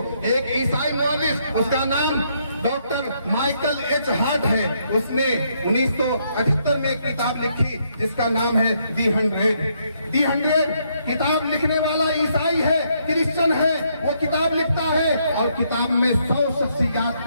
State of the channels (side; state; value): both; inverted; correlation -0.74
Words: ایک عیسائی مورخ, اس کا نام ڈاکٹر مائیکل ایچ ہارٹ ہے, اس نے 1978 میں ایک کتاب لکھی جس کا نام ہے دی 100. کتاب لکھنے والا عیسائی ہے, کرسچن ہے, وہ کتاب لکھتا ہے اور کتاب میں 100 شخصیات